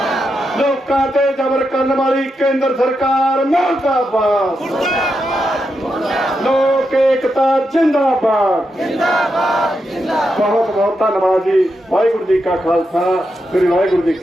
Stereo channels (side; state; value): both; normal; correlation 0.85